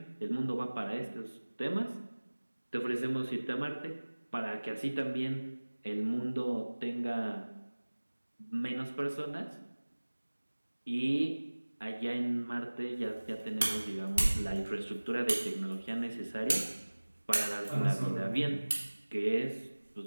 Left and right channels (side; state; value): both; inverted; correlation -1.00